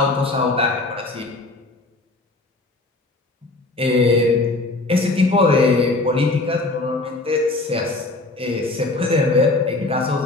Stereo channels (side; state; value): right; quieter; 3.0 dB